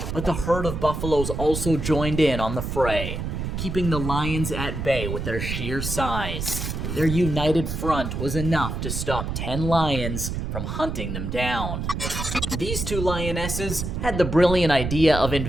But the herd of buffaloes also joined in on the fray, keeping the lions at bay with their sheer size. Their united front was enough to stop 10 lions from hunting them down. These 2 lionesses had the brilliant idea of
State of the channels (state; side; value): noise; right; rumble, 4 dB below the sound